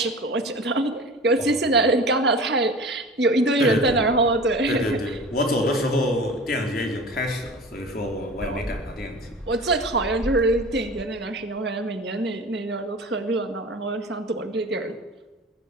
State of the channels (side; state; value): both; normal; correlation 0.37